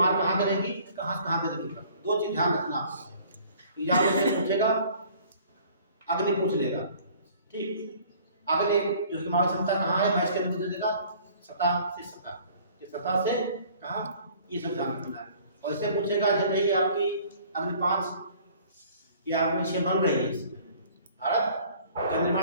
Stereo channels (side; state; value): both; inverted; correlation -0.53